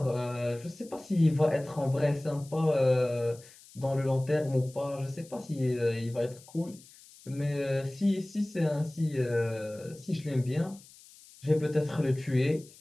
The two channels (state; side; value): noise; left; hiss, 23 dB below the sound